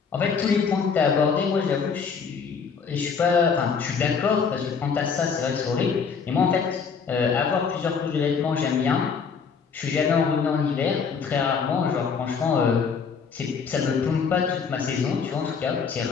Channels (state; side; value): quieter; right; 5.9 dB